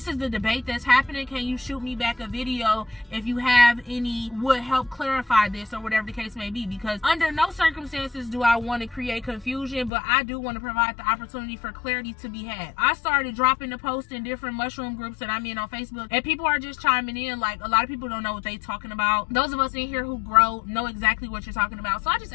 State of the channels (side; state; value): right; drops out; at 9.9 s